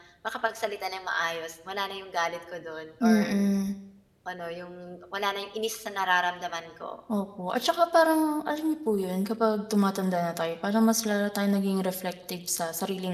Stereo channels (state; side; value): identical; both; correlation 1.00